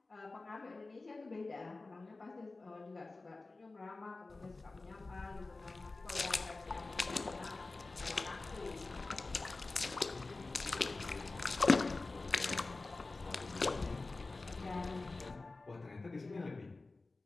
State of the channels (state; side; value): quieter; right; 3.4 dB